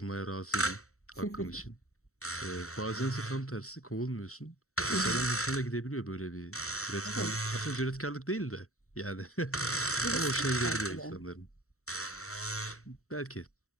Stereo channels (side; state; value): right; late; 0.64 ms